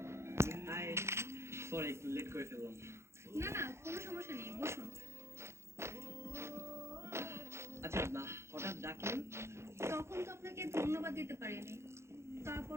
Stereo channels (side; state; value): left; late; 0.13 ms